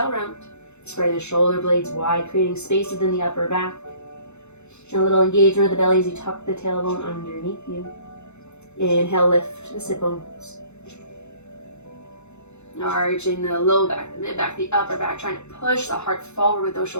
round. Spread the shoulder blades wide, creating space within the upper back. And a little engagement of the belly as you tuck the tailbone underneath you. Inhale, lift the sit bones. Arching the low back, the mid back, the upper back, trying to push the heart forward with those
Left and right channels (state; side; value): late; right; 0.82 ms